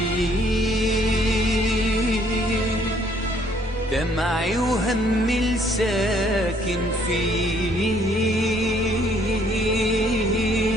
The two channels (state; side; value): normal; both; correlation 0.64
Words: دمعي وهمي الساكن فيه،